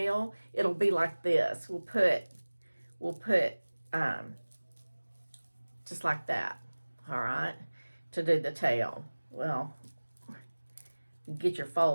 it'll be like this. We'll put we'll put just like that, all right, to do the tail. Well, get your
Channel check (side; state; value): both; inverted; correlation -1.00